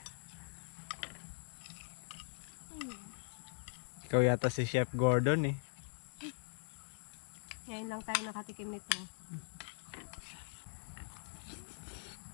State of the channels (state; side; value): silent; right; digital silence